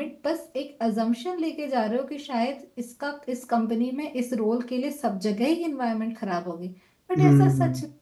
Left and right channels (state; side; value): identical; both; correlation 1.00